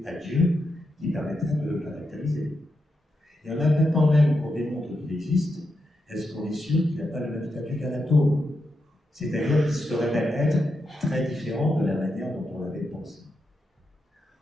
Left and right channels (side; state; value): both; normal; correlation 0.85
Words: à Dieu qui permettraient de le caractériser. Et en admettant même qu'on démontre qu'il existe, est-ce qu'on est sûr qu'il n'a pas le même statut qu'un atome? C'est-à-dire qu'il serait même être très différent de la manière dont on l'avait pensé.